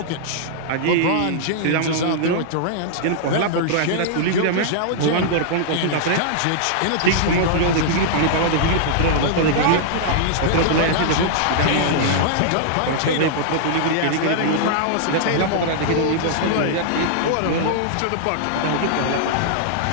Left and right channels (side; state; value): both; different; correlation -0.01